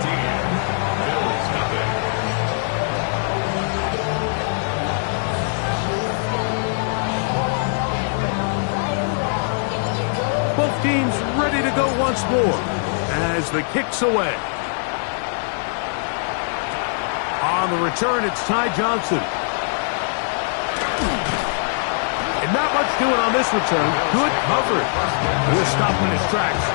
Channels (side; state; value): right; silent; digital silence